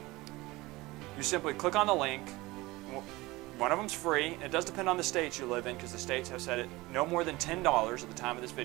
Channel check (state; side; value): quieter; left; 20.8 dB